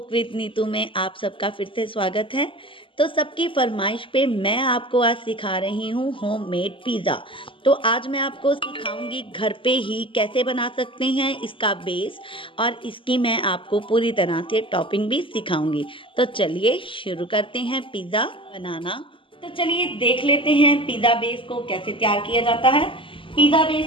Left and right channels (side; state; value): right; late; 0.25 ms